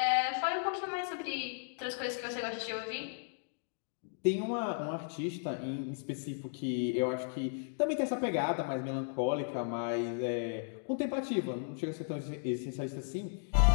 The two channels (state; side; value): silent; right; digital silence